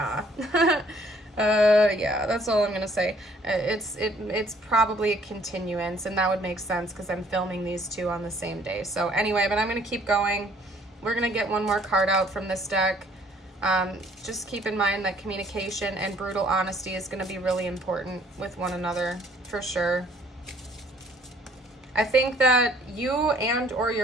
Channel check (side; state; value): both; normal; correlation 0.60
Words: Yeah, that's all I'm gonna say. It's probably a continuance, and that would make sense because I'm filming these two on the same day. So anyway, but I'm gonna keep going. We're gonna get one more card out from this deck. Just keep in mind that communication and brutal honesty is gonna be really important with one another, for sure. I think that you and or